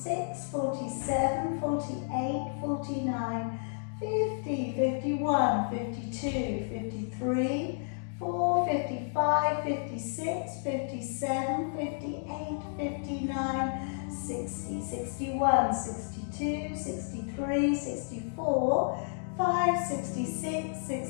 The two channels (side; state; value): right; silent; digital silence